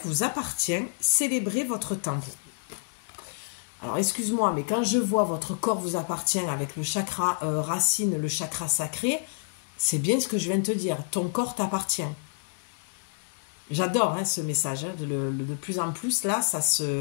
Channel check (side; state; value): right; silent; digital silence